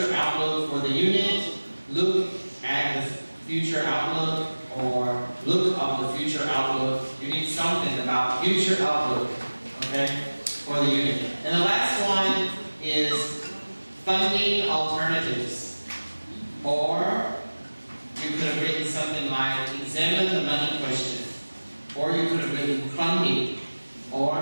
outlook for the unit, look at the future outlook, or look up the future outlook. You need something about future outlook, okay, for the unit. And the last one is funding alternatives. Or you could have written something like examine the money question. Or you could have written funding or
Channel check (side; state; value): both; inverted; correlation -1.00